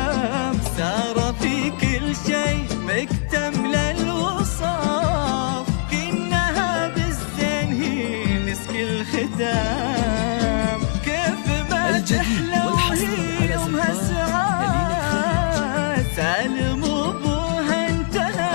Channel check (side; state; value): right; silent; 55 dB below the other